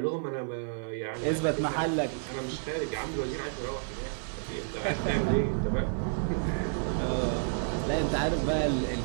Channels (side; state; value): left; silent; 56 dB below the other